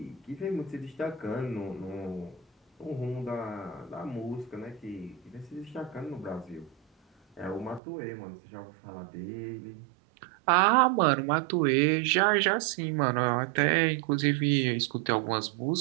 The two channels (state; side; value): drops out; left; at 7.8 s